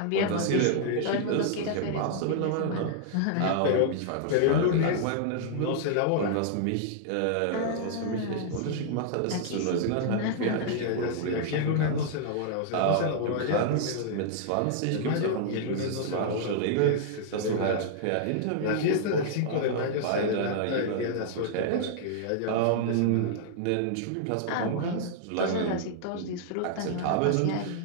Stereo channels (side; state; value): both; different; correlation -0.01